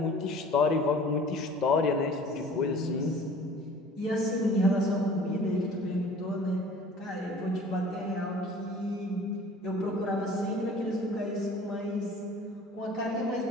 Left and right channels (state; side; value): normal; both; correlation 0.47